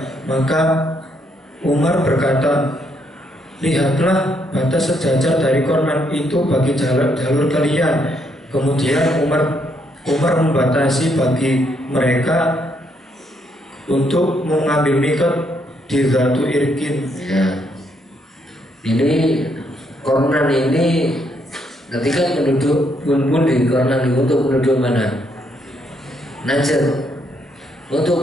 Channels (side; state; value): both; normal; correlation 0.74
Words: Maka Umar berkata, lihatlah batas sejajar dari Kornan itu bagi jalur kalian. Kemudian Umar membatasi bagi mereka untuk mengambil mikot di Zatu Irkin. Ya. Ini Kornan ini ketika penduduk pun di Kornan itu untuk penduduk mana? Najd.